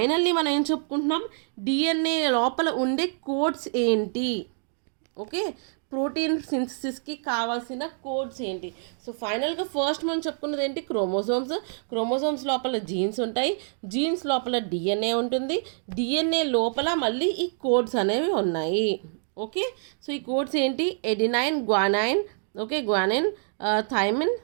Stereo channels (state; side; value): silent; left; digital silence